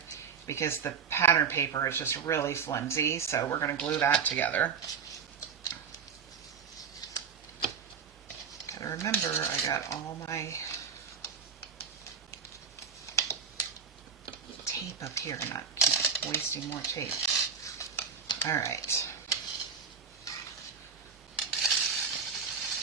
because the pattern paper is just really flimsy. So we're going to glue that together. Gotta remember, I got all my tape up here and not keep wasting more tape. All right.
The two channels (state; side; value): quieter; left; 6.4 dB